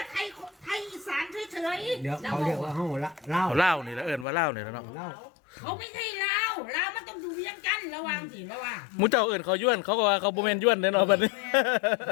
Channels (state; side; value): drops out; right; at 4.2 s